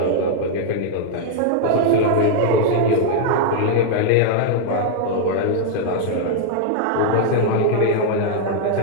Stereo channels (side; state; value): both; different; correlation 0.00